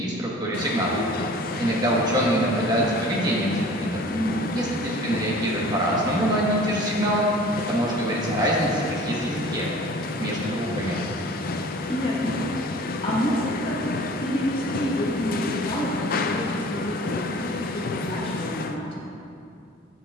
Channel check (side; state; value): both; normal; correlation 0.45